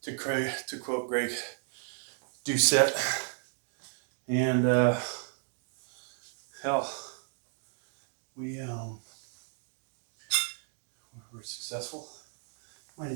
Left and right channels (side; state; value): left; silent; 55 dB below the other